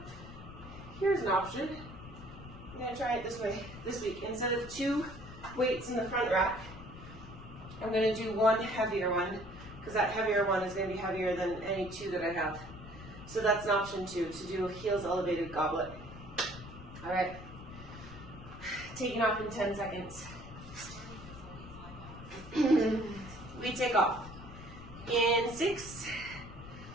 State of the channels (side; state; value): left; noise; rumble, 14 dB below the sound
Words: here's an option. I'm going to try it this way this week. Instead of 2 weights in the front rack, I'm going to do 1 heavier one, because that heavier one is going to be heavier than any 2 that I have. So that's an option too, to do a heels elevated goblet. All right, taking off in 10 seconds. We take off in 6,